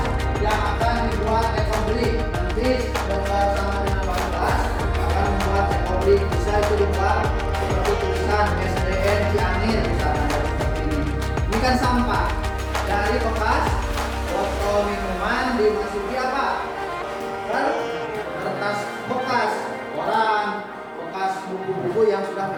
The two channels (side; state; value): both; identical; correlation 1.00